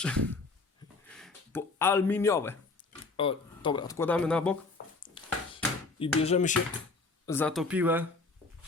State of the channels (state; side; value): quieter; right; 3.8 dB